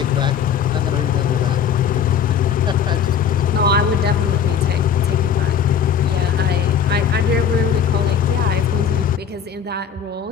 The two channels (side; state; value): right; quieter; 7.6 dB